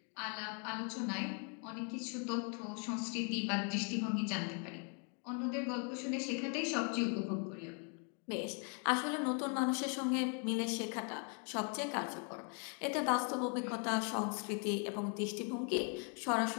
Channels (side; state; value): right; quieter; 39.3 dB